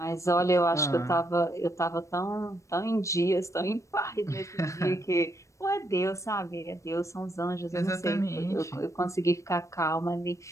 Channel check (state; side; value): late; right; 0.15 ms